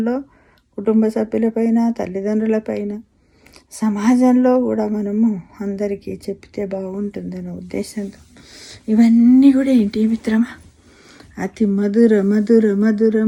కుటుంబ సభ్యులపైన, తల్లిదండ్రులపైన, సమాజంలో కూడా మనము అందరికీ చెప్తే బాగుంటుందన్న ఉద్దేశంతో ఇవన్నీ కూడా ఏంటి మిత్రమా, అతి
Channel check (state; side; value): identical; both; correlation 1.00